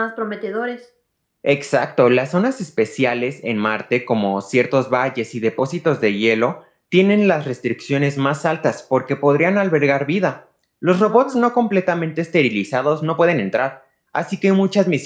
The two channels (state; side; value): identical; both; correlation 1.00